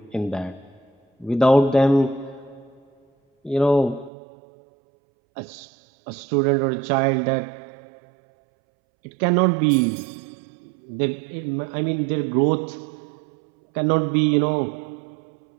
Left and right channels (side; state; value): left; drops out; at 4.1 s